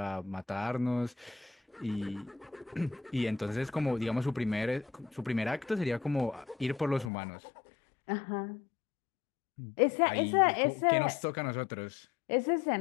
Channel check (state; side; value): drops out; right; at 7.1 s